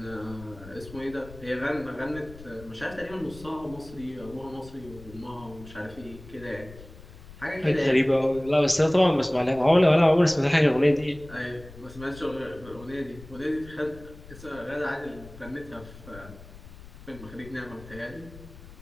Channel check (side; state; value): left; noise; rumble, 18 dB below the sound